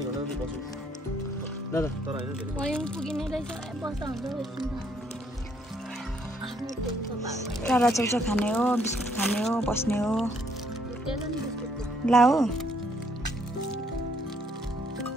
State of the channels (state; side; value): normal; both; correlation 0.69